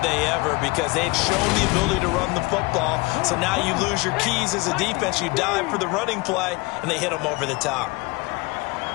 they ever, because they had shown the ability to run the football. So now you lose your keys as a defense. You dive for the running play, and they hit them over the top.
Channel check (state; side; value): quieter; right; 24.5 dB